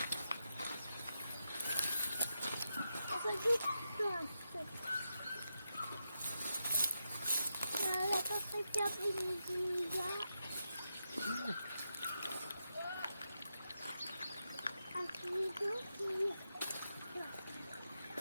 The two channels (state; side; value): inverted; both; correlation -0.87